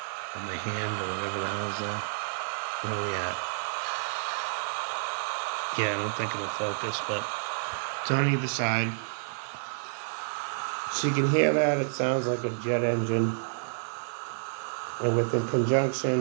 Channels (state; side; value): silent; left; digital silence